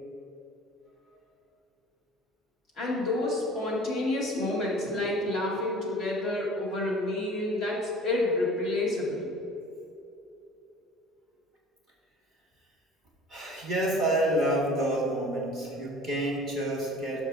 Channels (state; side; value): normal; both; correlation 0.45